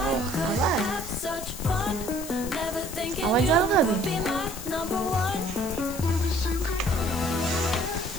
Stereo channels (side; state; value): left; noise; hiss, 12 dB below the sound